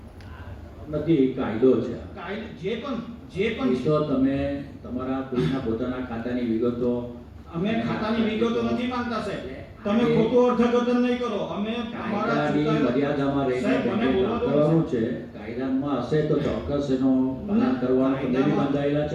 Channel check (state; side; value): identical; both; correlation 1.00